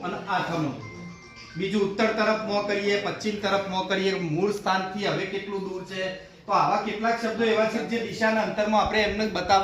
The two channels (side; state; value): both; identical; correlation 1.00